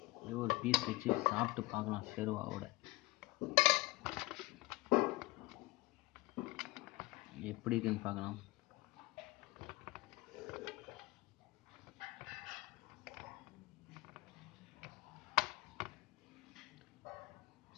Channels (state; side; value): quieter; right; 20.9 dB